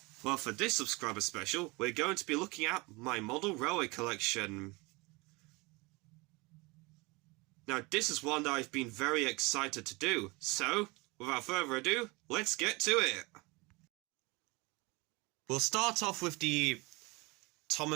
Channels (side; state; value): left; quieter; 25.5 dB